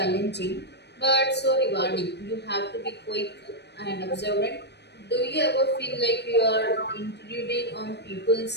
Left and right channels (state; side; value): late; right; 0.49 ms